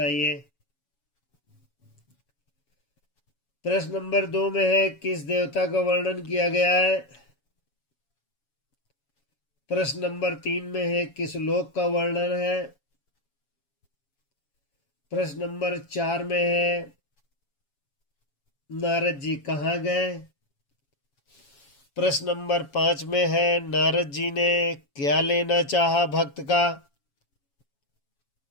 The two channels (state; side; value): late; right; 7.2 ms